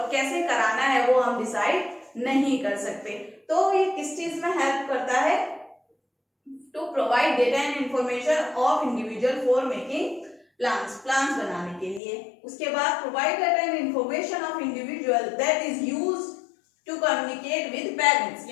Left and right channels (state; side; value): drops out; right; at 12.0 s